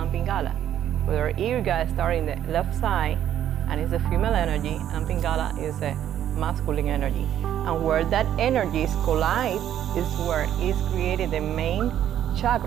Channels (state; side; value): quieter; left; 10.8 dB